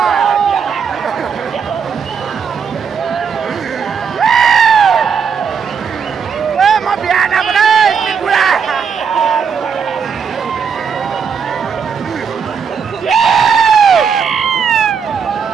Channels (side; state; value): left; quieter; 6.5 dB